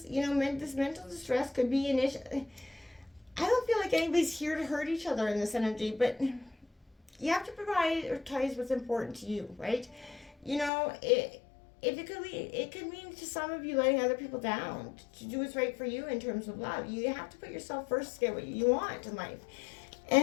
you know, this mental distress could be an issue. I don't feel like anybody's here to hurt each other in this energy, but you have to prioritize what's important to you, right? You know, it could mean to some of you letting other people down to do what's right for you in terms of love. You have to put yourself first to get what you want in life.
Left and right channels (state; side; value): drops out; right; at 10.7 s